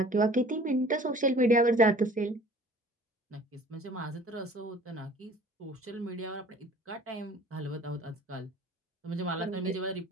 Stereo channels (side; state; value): both; normal; correlation 0.48